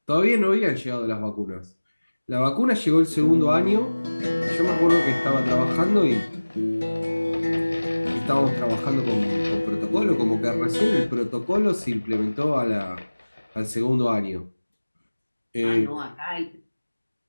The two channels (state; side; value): inverted; both; correlation -1.00